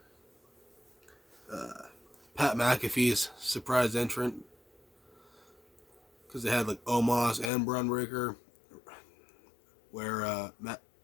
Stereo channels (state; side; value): drops out; right; at 7.5 s